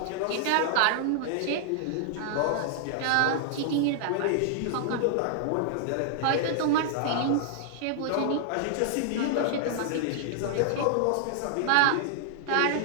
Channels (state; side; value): different; both; correlation -0.01